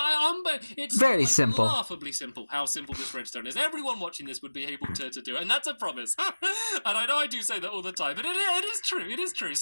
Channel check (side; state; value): both; inverted; correlation -1.00